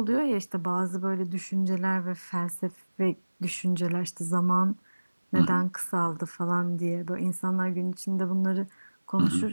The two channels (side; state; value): both; inverted; correlation -1.00